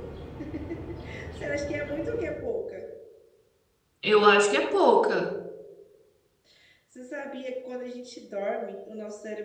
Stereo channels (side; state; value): both; identical; correlation 1.00